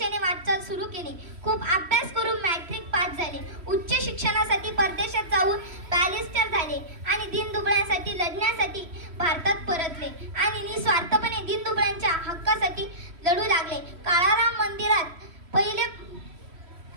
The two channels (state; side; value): late; left; 3.1 ms